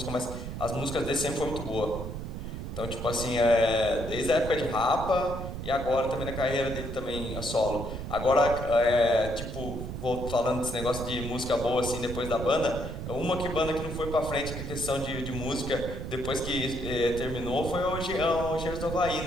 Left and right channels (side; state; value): right; noise; rumble, 6 dB below the sound